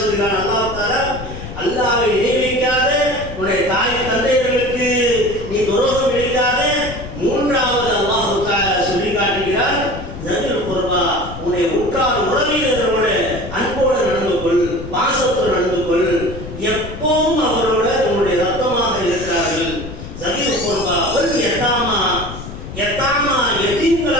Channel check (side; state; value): left; noise; rumble, 11 dB below the sound